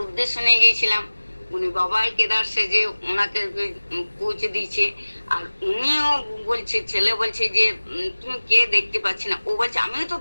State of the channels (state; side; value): inverted; both; correlation -1.00